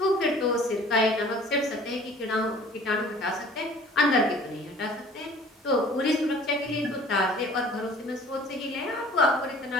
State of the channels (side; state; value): both; normal; correlation 0.49